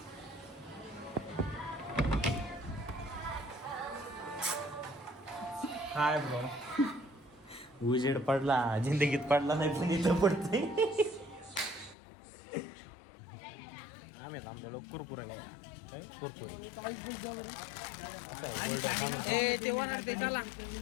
काय ब्रो उजेड पडला जिंदगीत पडला नाही पण इथं पडते. आम्ही थांबलेलो कुरकुरा घ्यायला. कुरकुरे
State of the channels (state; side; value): drops out; right; at 12.0 s